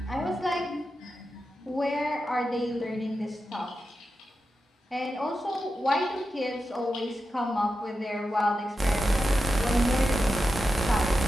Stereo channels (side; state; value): both; normal; correlation 0.90